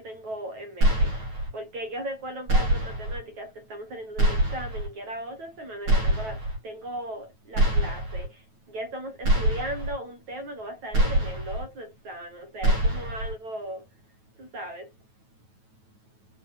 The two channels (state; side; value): late; left; 9.2 ms